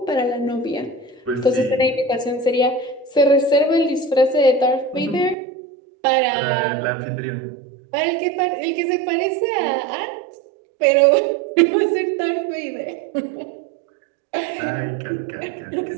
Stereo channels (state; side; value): drops out; left; at 5.4 s